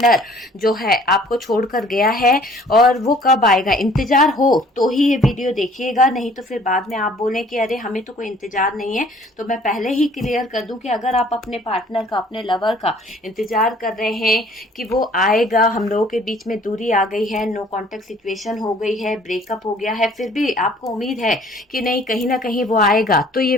जो है आपको छोड़कर गया है और वो कब आएगा, इंतजार हो तो ही ये वीडियो देखिएगा, नहीं तो फिर बाद में आप बोलें कि अरे हमें तो कोई इंतजार नहीं है। तो मैं पहले ही क्लियर कर दूं कि अगर आप अपने पार्टनर का, अपने लवर का इंतजार कर रहे हैं कि वो आएगा, हम लोगों के बीच में दूरी आ गई है, नो कांटेक्ट सिचुएशन हो गई है, ब्रेकअप हो गया है, फिर भी आपको उम्मीद है कि नहीं कहीं ना कहीं वो आएगा, तो ये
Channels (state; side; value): normal; both; correlation 0.55